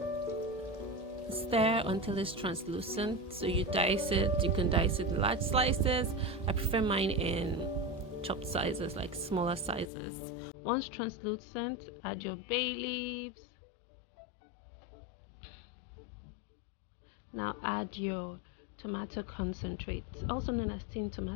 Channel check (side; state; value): right; drops out; at 9.9 s